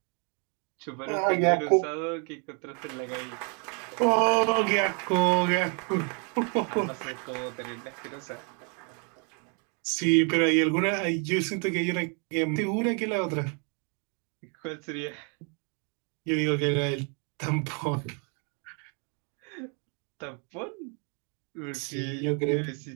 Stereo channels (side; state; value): left; quieter; 37.6 dB